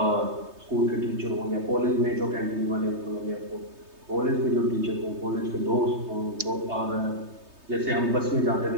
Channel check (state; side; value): late; left; 3.2 ms